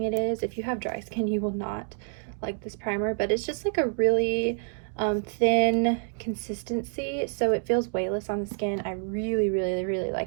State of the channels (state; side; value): silent; left; 60 dB below the other